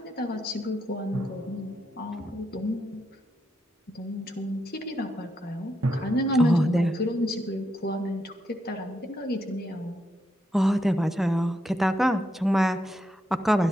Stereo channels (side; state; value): both; normal; correlation 0.81